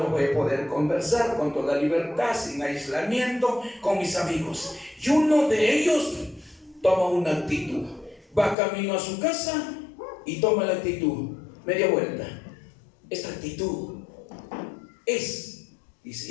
voy a poder conversar con toda libertad, sin aislamiento, con mis amigos. Y uno de ellos toma una actitud, va camino a su casa y toma la actitud, media vuelta. Esta actitud es, dice,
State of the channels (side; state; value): right; drops out; at 8.6 s